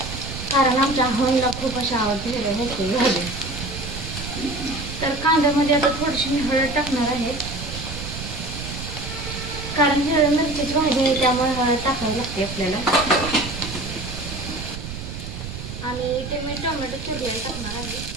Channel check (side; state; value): right; noise; rumble, 8 dB below the sound